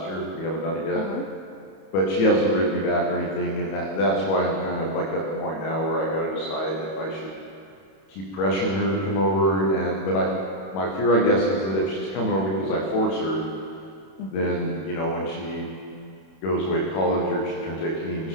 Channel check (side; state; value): right; late; 31 ms